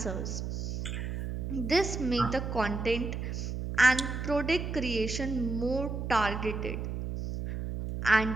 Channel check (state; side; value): noise; right; hum, 4 dB below the sound